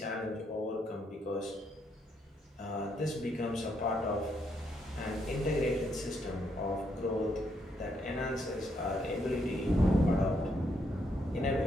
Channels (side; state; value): both; normal; correlation 0.76